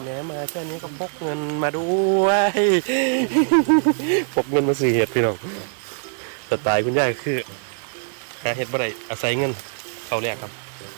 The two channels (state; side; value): silent; left; digital silence